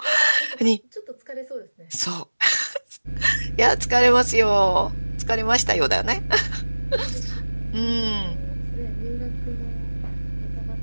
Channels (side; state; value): both; inverted; correlation -1.00